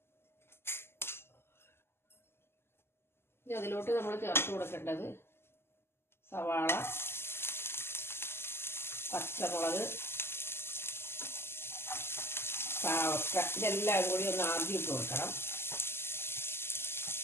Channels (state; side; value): late; right; 0.12 ms